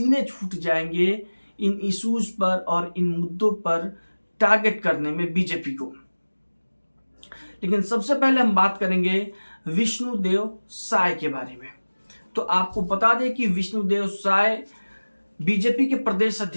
छूट जाएंगे इन इश्यूज पर और इन मुद्दों पर टारगेट करने में बीजेपी को। लेकिन सबसे पहले हम बात करेंगे विष्णुदेव साय के बारे में। तो आपको बता दें कि विष्णुदेव साय बीजेपी के प्रदेश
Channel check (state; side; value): inverted; both; correlation -1.00